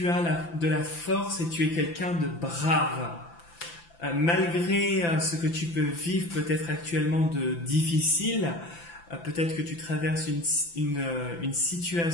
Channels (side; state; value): right; late; 5.9 ms